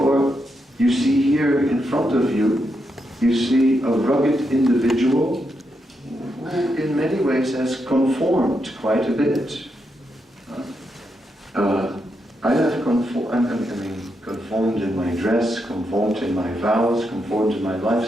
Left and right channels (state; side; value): normal; both; correlation 0.83